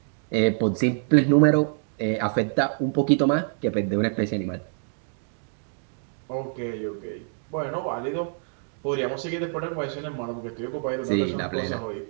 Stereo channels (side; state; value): left; silent; digital silence